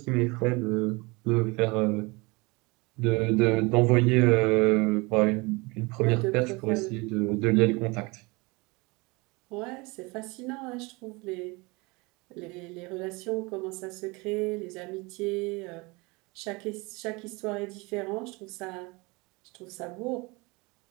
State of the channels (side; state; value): left; quieter; 25.9 dB